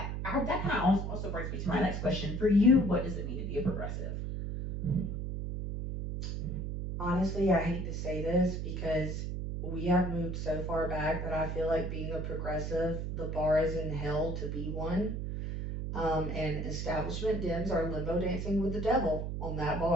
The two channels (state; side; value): noise; right; hum, 3 dB below the sound